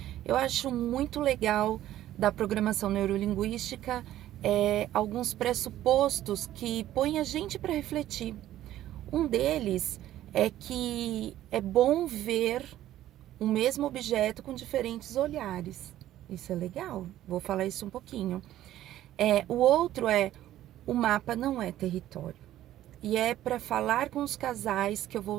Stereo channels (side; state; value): left; quieter; 13.3 dB